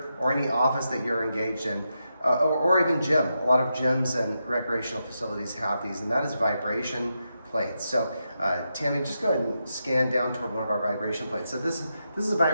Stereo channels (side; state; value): both; inverted; correlation -0.86